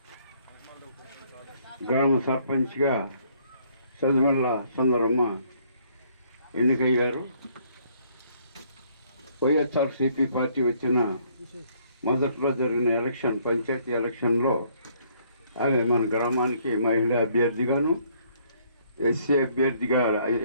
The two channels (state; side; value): inverted; both; correlation -0.65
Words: గ్రామ సర్పంచ్గా సదిమల్ల సుందరమ్మ ఎన్నికయ్యారు. వైఎస్ఆర్సీపీ పార్టీ వచ్చిన మొదట్లో జరిగిన పంచాయతీ ఎలక్షన్లో ఆమె మన గ్రామానికి మహిళా అభ్యర్థిగాను,